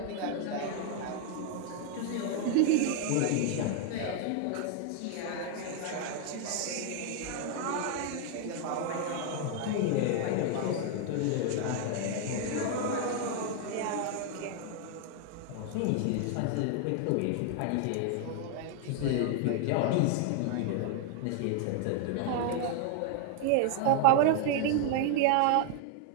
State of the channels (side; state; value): both; different; correlation 0.00